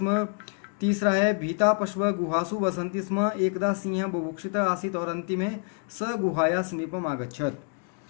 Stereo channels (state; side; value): quieter; right; 37.4 dB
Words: तीसरा है भीता पशव गुहासु वसंति स्म एकदा सिंह बुभुक्षित आसीत और अंतिमे स गुहाया समीपम आगच्छत।